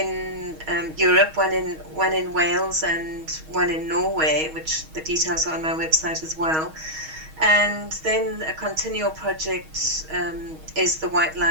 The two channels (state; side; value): late; left; 6.3 ms